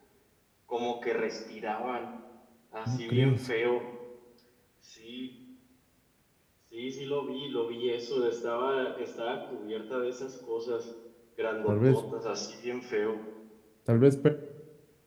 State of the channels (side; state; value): both; identical; correlation 1.00